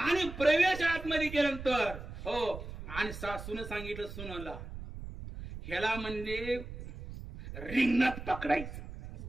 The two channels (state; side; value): noise; right; rumble, 10 dB below the sound